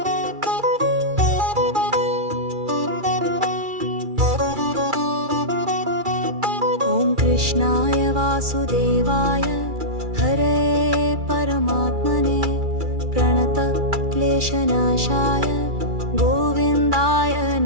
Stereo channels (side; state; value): left; late; 2.3 ms